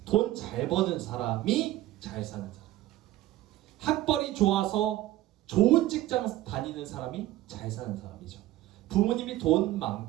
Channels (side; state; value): left; quieter; 15.3 dB